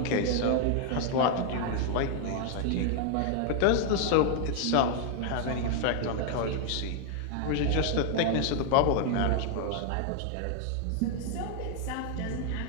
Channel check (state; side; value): different; both; correlation 0.00